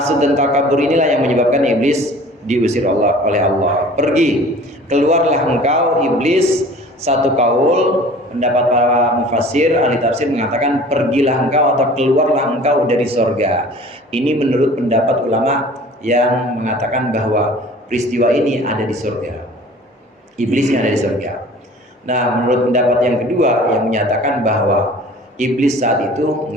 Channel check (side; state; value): both; normal; correlation 0.46